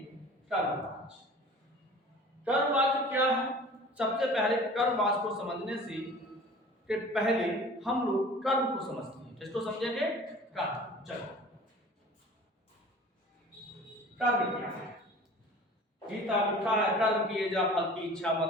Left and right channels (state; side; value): normal; both; correlation 0.44